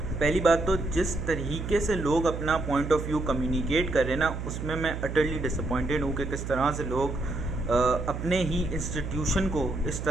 बात तो जिस तरीके से लोग अपना पॉइंट ऑफ व्यू कम्युनिकेट कर रहे हैं ना, उसमें मैं अटरली डिसअपॉइंटेड हूँ कि किस तरह से लोग अपने ही इंस्टीट्यूशन को इस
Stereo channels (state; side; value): noise; right; hum, 6 dB below the sound